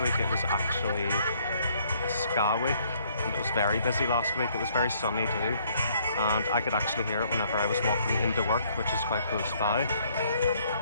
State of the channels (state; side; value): inverted; both; correlation -0.64